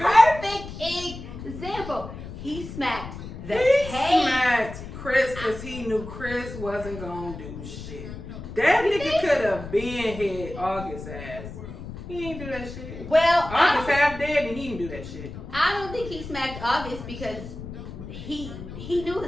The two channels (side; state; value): left; noise; rumble, 11 dB below the sound